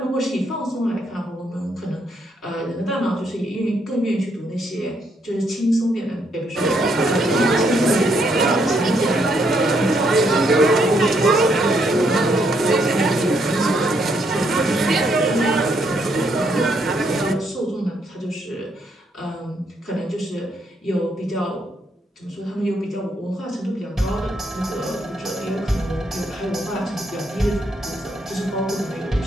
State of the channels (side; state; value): both; normal; correlation 0.74